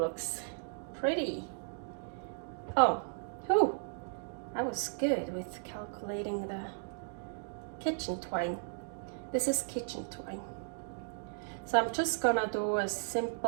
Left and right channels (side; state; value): left; silent; digital silence